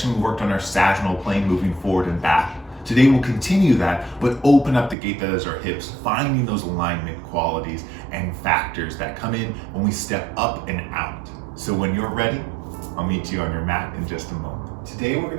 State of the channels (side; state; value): left; drops out; at 5.0 s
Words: we worked on our sagittal plane, moving forward and back. Today we'll continue that, but open up the gate that is our hips, finding those alignment qualities and factors that come in when we step up and out. So when you're ready, I'll meet you on your mat in just a moment. Today we're